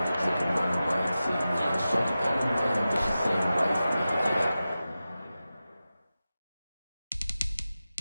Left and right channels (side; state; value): both; inverted; correlation -0.94